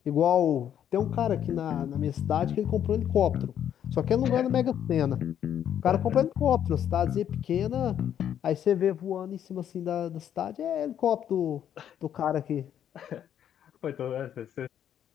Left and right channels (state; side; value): quieter; right; 9.8 dB